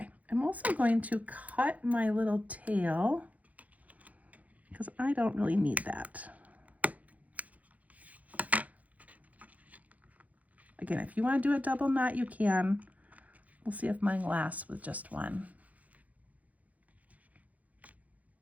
I'm also going to cut my little tail because I don't really need that. Again, if you want to do a double knot, you can. We'll see if mine lasts with just one.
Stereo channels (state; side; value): late; left; 0.073 ms